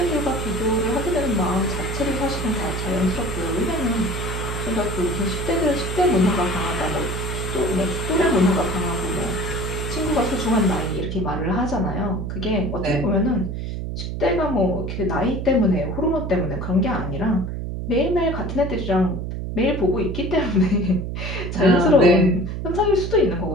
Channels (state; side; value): noise; right; hum, 4 dB below the sound